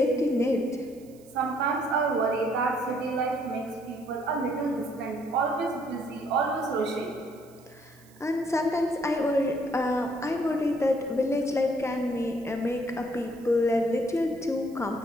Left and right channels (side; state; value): right; noise; hiss, 27 dB below the sound